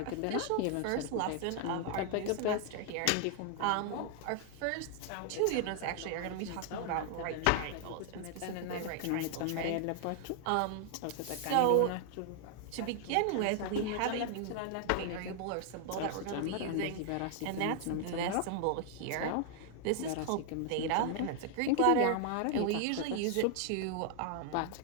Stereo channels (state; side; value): different; both; correlation 0.00